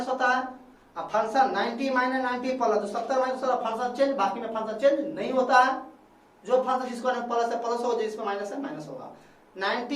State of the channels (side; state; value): both; identical; correlation 1.00